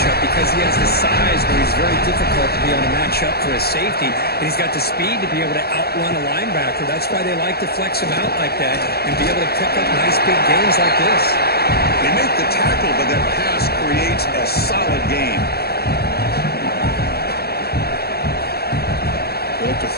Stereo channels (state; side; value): late; right; 0.46 ms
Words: because he has the size where he's very difficult to be able to match up for a safety. And he's got the speed to be able to outrun a linebacker. That's why they like to flex him out like that and be able to pick up nice big gains like this. They make the tackle, but that pass creates a solid gain. They'll look to